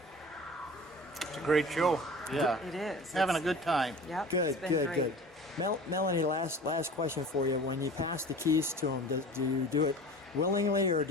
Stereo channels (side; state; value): both; normal; correlation 0.39